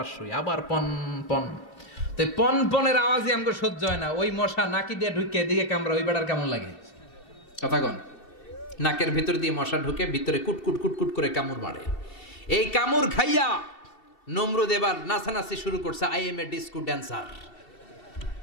শুই, আবার পন পন। তো পন পনের আওয়াজই আমাকে সহ্য হয় না। ওই মশা নাকি দিয়ে ঢুকে এদিকে কামড়া, ওই বেড়ার কেমন লাগে? কথা কন। নাকের ভিতর দিয়ে মশা ঢুকে ভিতরে কুটকুট কুটকুট করে কামড় মারে। এই কামড় খাইয়া নমরুদ এবার নাচানাচি শুরু করছে। I M A disco dancer.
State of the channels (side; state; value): right; late; 2.7 ms